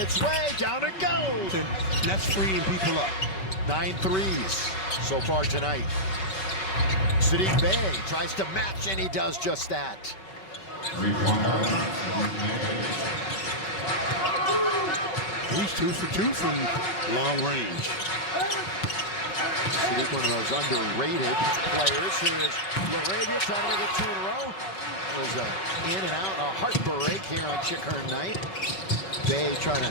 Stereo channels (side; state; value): right; late; 5.2 ms